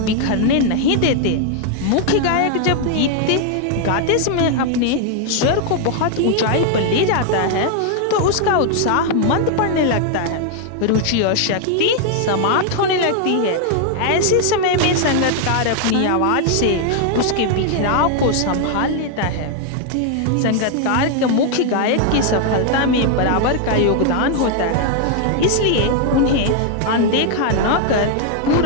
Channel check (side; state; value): both; different; correlation 0.00